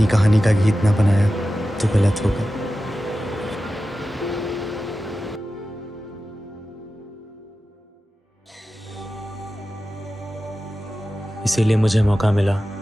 कहानी का गीत ना बनाया तो गलत होगा। इसीलिए मुझे मौका मिला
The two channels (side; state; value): both; normal; correlation 0.94